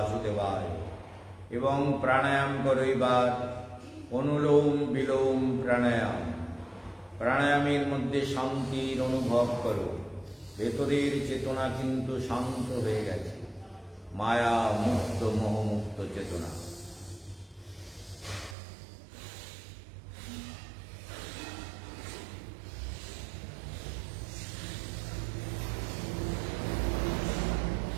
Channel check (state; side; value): drops out; left; at 18.6 s